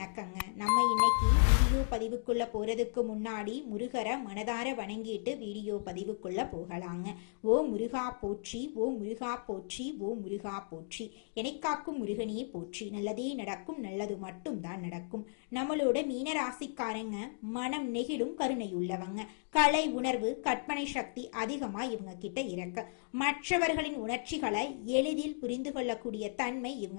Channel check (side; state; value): right; silent; digital silence